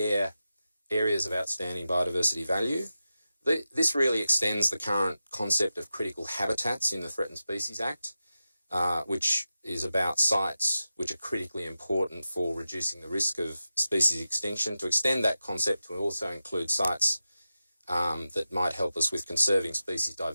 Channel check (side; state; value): both; inverted; correlation -0.92